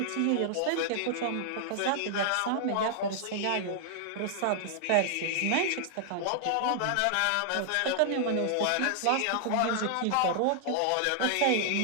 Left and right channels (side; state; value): both; different; correlation -0.01